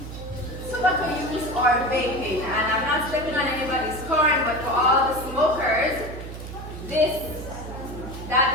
Tobacco use or vaping, and I'm not stepping on anybody's corn, but for all the smokers,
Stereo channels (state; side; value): noise; right; hum, 10 dB below the sound